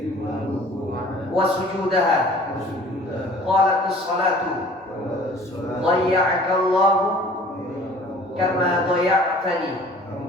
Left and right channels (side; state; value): both; normal; correlation 0.49